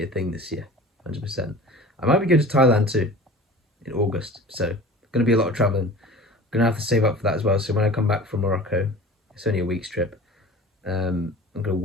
thing this year, 100%. I might be going to Thailand too in August, so going to be a lot of traveling. Gonna have to save up for that as well. So when I come back from Morocco, it's only a week's trip. I'm gonna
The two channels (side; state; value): both; normal; correlation 0.41